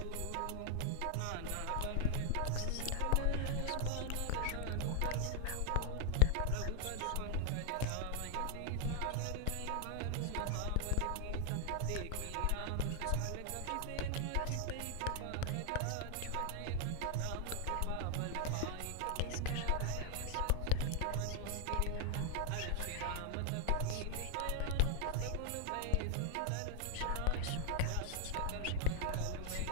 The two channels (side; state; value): both; different; correlation 0.00